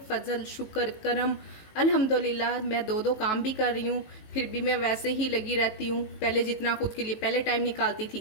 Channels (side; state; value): right; late; 18 ms